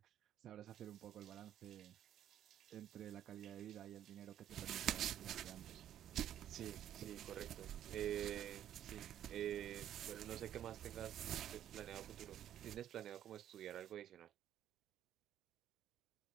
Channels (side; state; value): left; quieter; 11.0 dB